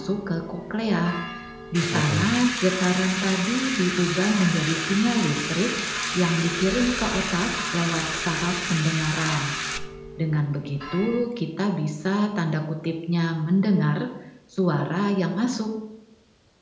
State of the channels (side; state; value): both; identical; correlation 1.00